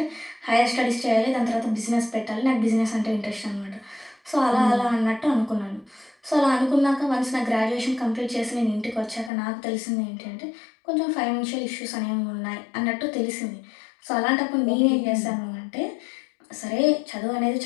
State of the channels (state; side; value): drops out; right; at 9.3 s